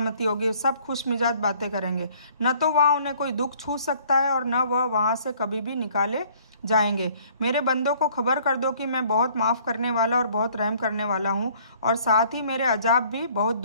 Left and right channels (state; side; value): inverted; both; correlation -0.58